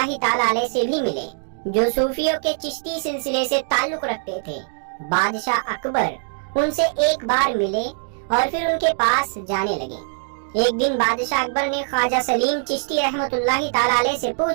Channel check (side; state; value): left; silent; 64 dB below the other